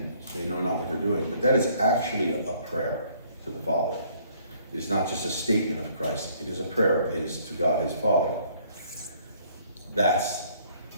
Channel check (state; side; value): inverted; both; correlation -0.62